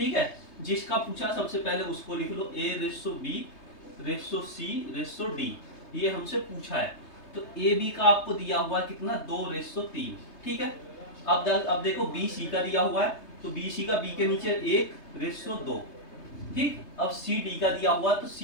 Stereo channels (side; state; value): right; late; 3.3 ms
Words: है। जिसका पूछा सबसे पहले उसको लिख लो, A:B:C:D, ये हमसे पूछा है। तो AB का आपको दिया हुआ है कितना 2:3, ठीक है। अब देखो BC का दिया हुआ है, तो BC का B के नीचे 1:2, ठीक। अब CD का दिया हुआ तो